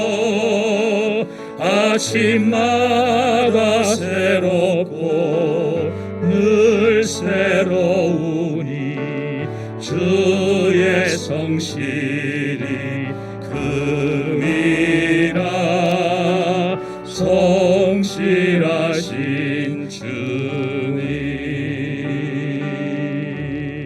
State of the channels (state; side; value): identical; both; correlation 1.00